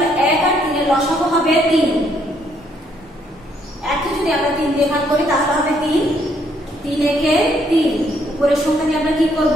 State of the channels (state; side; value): normal; both; correlation 0.70